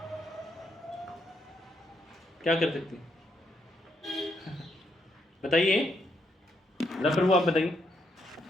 क्या कर सकते हैं? बताइए प्रभु आप बताइए।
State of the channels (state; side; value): normal; both; correlation 0.77